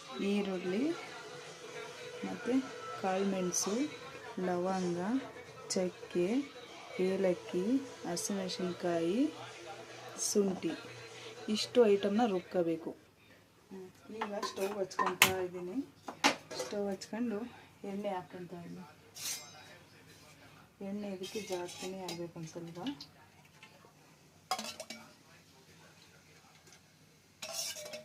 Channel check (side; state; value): both; identical; correlation 1.00